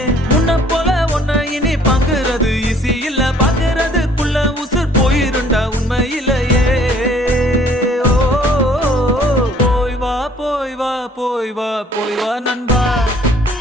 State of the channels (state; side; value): normal; both; correlation 0.58